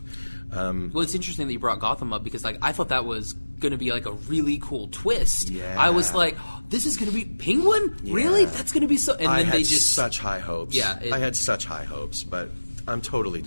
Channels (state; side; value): inverted; both; correlation -1.00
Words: Well, it's interesting that you brought Gotham up, because I thought that was going to be a really cool twist. Yeah. I was like, oh, this is going to be Penguin? Yeah. Really? That's going to be so... And then they just... such high hopes. Yeah. I had such high hopes, but I'm totally